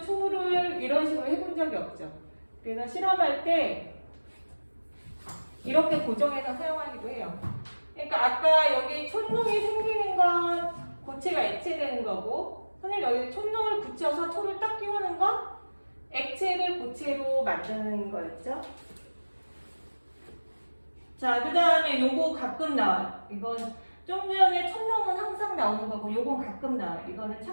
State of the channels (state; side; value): inverted; both; correlation -1.00